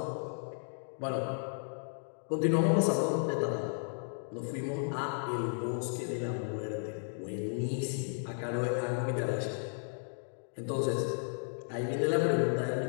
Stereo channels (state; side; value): silent; right; digital silence